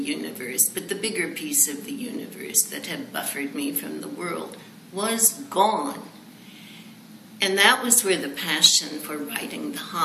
but the bigger piece of the universe that had buffered me from the world was gone. And that was where the passion for writing The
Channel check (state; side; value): identical; both; correlation 1.00